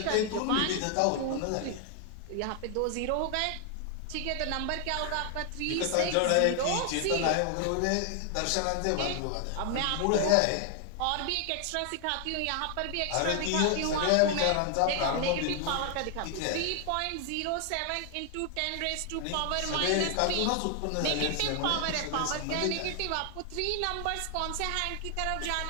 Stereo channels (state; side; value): different; both; correlation 0.00